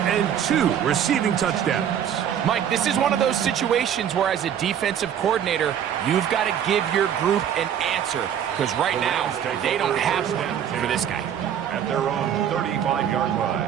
and 2 receiving touchdowns. Mike, this is one of those situations where as a defensive coordinator, you've got to give your group an answer. Because right now, they don't have one for this guy. At their own 35-yard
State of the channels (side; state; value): left; quieter; 9.3 dB